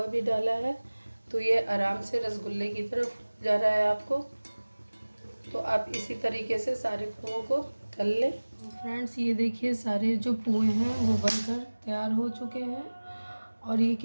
भी डाला है तो ये आराम से रसगुल्ले की तरफ जा रहा है आपको। तो आप इसी तरीके से सारे पुओं को तल लें। फ्रेंड्स ये देखिए सारे जो पुए हैं वो बनकर तैयार हो चुके हैं और ये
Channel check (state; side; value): inverted; both; correlation -1.00